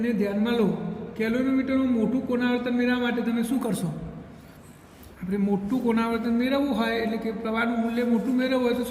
ને ધ્યાનમાં લો. કેલોરીમીટરનું મોટું કોણાવર્તન મેળવવા માટે તમે શું કરશો? આપણે મોટું કોણાવર્તન મેળવવું હોય, એટલે કે પ્રવાહનું મૂલ્ય મોટું મેળવવું હોય તો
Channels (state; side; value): identical; both; correlation 1.00